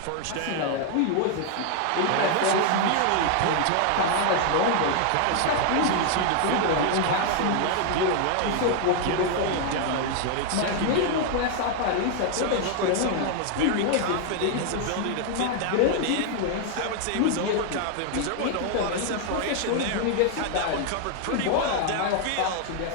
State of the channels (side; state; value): both; different; correlation 0.00